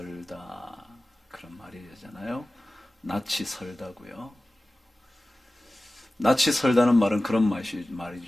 그런 말이잖아요. 낯이 설다고요. 낯이 설다는 말은 그런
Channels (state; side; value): normal; both; correlation 0.96